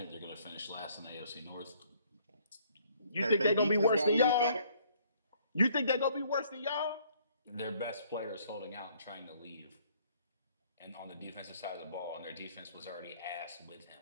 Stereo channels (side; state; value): both; inverted; correlation -0.62